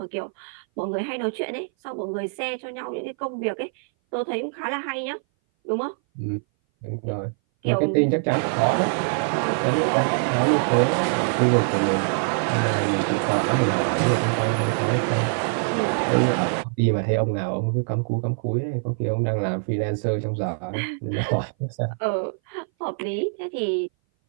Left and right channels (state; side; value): silent; left; 59 dB below the other